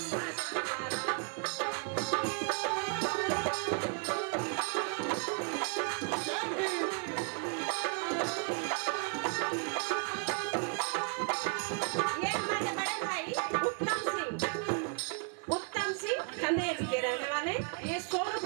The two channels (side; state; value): left; quieter; 39.3 dB